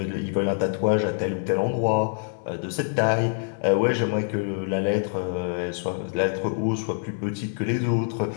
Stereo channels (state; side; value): silent; right; digital silence